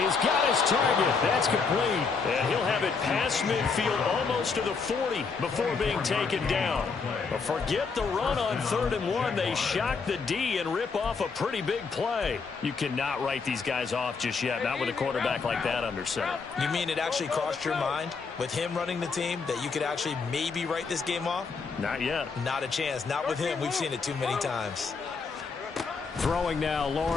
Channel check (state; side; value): quieter; right; 5.0 dB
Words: got his target. That's complete. And he'll have it past midfield almost to the 40 before being taken down. But forget the run on 3rd and 1. They shock the D and rip off a pretty big play. You cannot write these guys off just yet, not with a quarterback like that under center. You mean it actually crossed your mind with him running the team that you could actually maybe write this game off? Not yet. Not a chance. Not with him. We've seen it too many times. Throwing now,